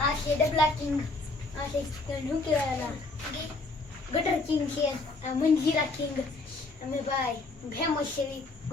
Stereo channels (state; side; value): quieter; right; 3.4 dB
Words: આ છે ડબલા કિંગ, આ છે શું કહેવાય ગટર કિંગ છે, આ મંજીરા કિંગ. અમે ભાઈ ફેમસ છે